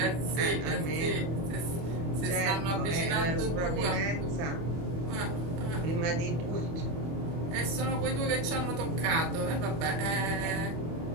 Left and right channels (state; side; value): late; left; 24 ms